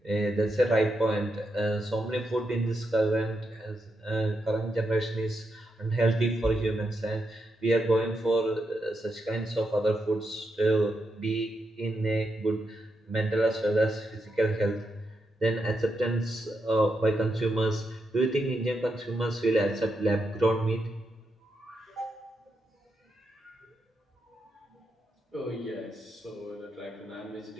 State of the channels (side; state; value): both; normal; correlation 0.83